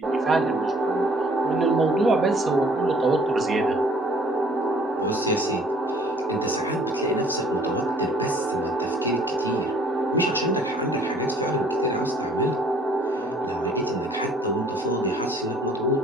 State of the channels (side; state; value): both; normal; correlation 0.57